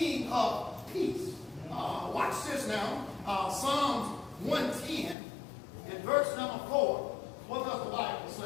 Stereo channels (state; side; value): drops out; right; at 5.2 s